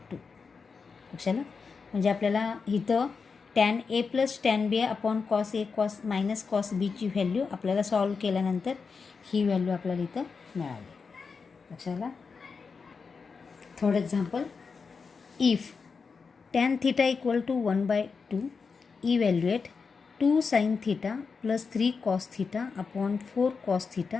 लक्षाला. म्हणजे आपल्याला इथं tan A + tan B upon cos A cos B ची व्हॅल्यू आपल्याला सॉल्व केल्यानंतर ही व्हॅल्यू आपल्याला इथं मिळाली लक्षाला. Third example. If tan θ = 1/2 evaluate 2 sin θ + 3 cos θ upon 4 cos θ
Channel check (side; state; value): right; quieter; 5.1 dB